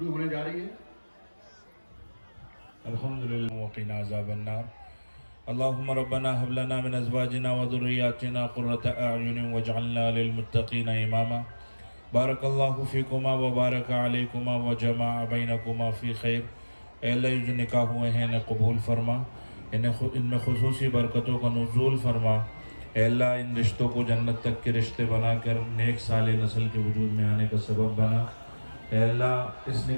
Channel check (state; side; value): inverted; both; correlation -1.00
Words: होने जा रही है। अल्हम्दुलिल्लाह वक़िना अज़ाबन्नार। अल्लाहुम्मा रब्बना हब लना मिन अज़वाजिना व ज़ुर्रिय्यातिना क़ुर्रता अ'युनिन वजअलना लिलमुत्तक़ीना इमामा। बारकल्लाहु फ़ीकुमा व बारक अलैकुमा व जमाअ बैनकुमा फ़ी खैर। ऐ अल्लाह, जो निकाह हुए हैं इन्हें कबूल फरमा, इनमें खुसूसी बरकतों का नुज़ूल फरमा। ऐ अल्लाह, इन रिश्तों को जन्नत तक के रिश्ते बनाकर नेक साले नस्ल के वजूद में आने का सबब बना। ऐ अल्लाह, इस